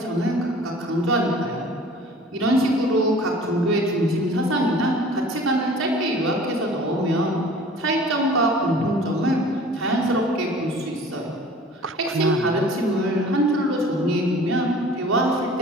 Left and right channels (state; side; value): normal; both; correlation 0.46